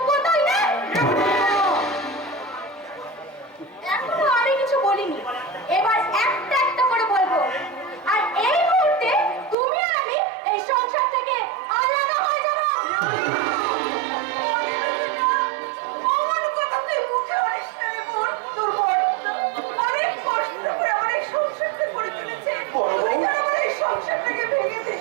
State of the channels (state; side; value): drops out; left; at 9.6 s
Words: নেই। এখনো আমি কিছু বলিনি, এবার একটা একটা করে বলবো। আর এই মুহূর্তে তুমি আর আমি এই সংসার থেকে আলাদা হয়ে যাবো। অমন কথা তুই মুখে বলিস না রে বোন। তোর বোন অনেক কষ্ট করে আমার এই সংসারটা করে তুলেছে। তুই যেন আমার এই সংসারটাকে ভেঙে দিস